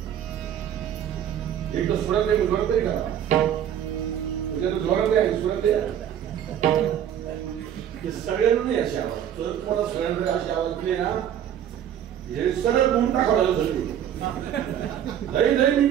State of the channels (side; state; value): left; quieter; 9.9 dB